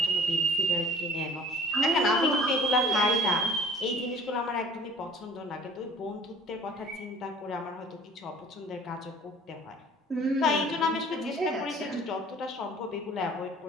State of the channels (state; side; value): normal; both; correlation 0.49